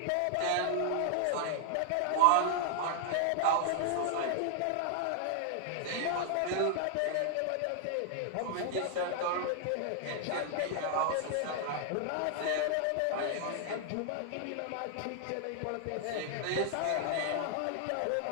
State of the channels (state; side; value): different; both; correlation 0.00